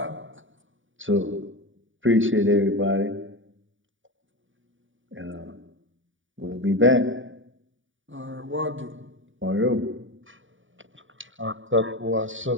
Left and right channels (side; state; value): left; late; 0.57 ms